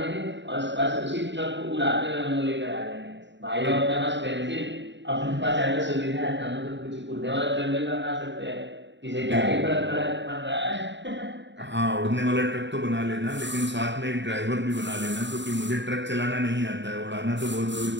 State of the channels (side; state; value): left; late; 0.53 ms